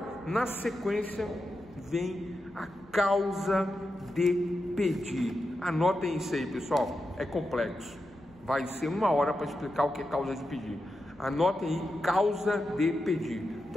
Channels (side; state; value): left; noise; rumble, 28 dB below the sound